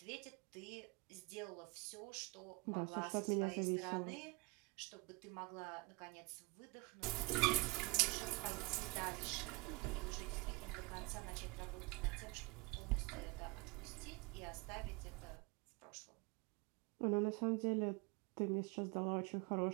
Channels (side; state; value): left; quieter; 26.5 dB